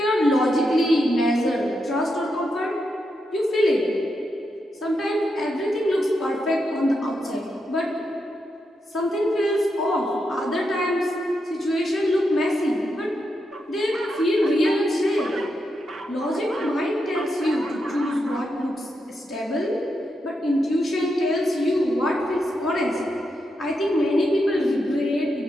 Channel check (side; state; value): both; normal; correlation 0.84